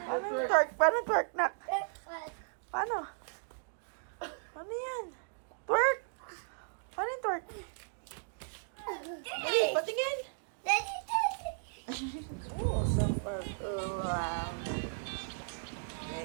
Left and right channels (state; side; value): silent; left; digital silence